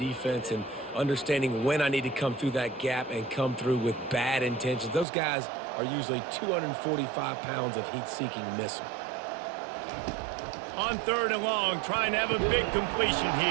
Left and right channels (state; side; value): drops out; left; at 5.1 s